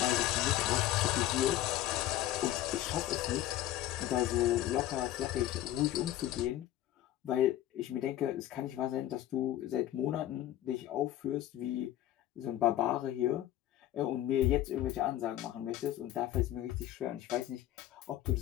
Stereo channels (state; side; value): quieter; right; 13.4 dB